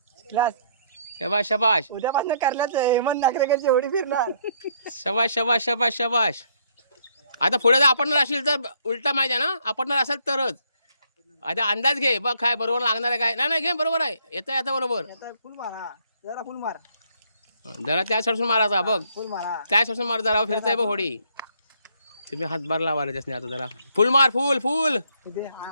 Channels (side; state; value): both; inverted; correlation -0.68